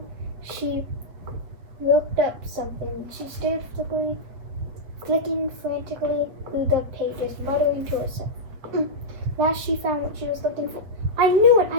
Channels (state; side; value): late; left; 7.4 ms